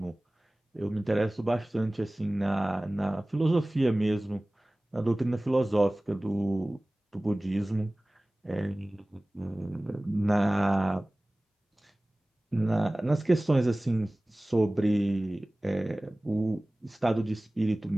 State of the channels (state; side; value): normal; both; correlation 0.98